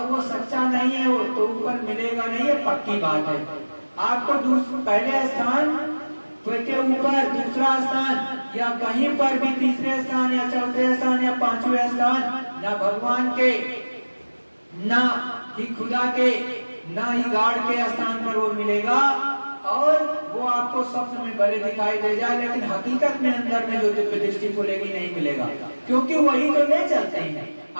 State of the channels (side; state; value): both; inverted; correlation -1.00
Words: वो सच्चा नहीं है, वो तो ऊपर मिलेगा नहीं, है पक्की बात है। आपको पहले स्थान के ऊपर दूसरा स्थान या कहीं पर भी तीसरे स्थान या चौथे स्थान या पांचवें स्थान, ना भगवान के, ना ही खुदा के, ना ही गार्ड के स्थान पर वो मिलेगा। और वो आपको स्वप्न में भले दिखाई दे जाए, लेकिन हकीकत में अंदर में जो दिव्य दृष्टि खुलेगी नहीं मिलेगा, क्योंकि वही तो ले चलते हैं।